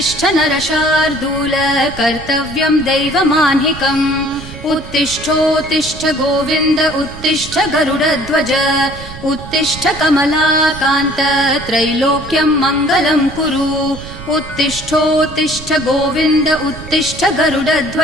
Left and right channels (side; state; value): right; noise; rumble, 13 dB below the sound